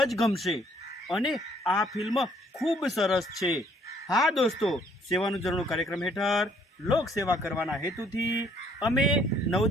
જ ગમશે અને આ ફિલ્મ ખૂબ સરસ છે. હા દોસ્તો, સેવાનું ઝરણું કાર્યક્રમ હેઠળ લોક સેવા કરવાના હેતુથી અમે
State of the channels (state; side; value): normal; both; correlation 0.63